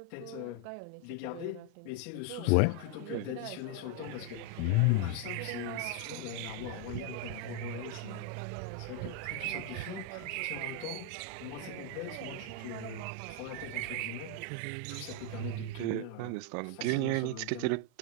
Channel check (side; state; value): both; different; correlation 0.01